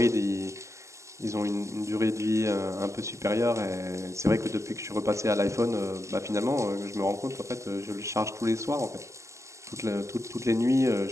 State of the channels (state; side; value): late; left; 0.14 ms